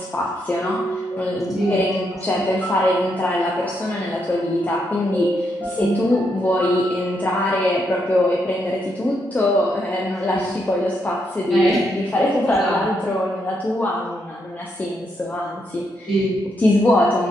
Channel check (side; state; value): both; normal; correlation 0.79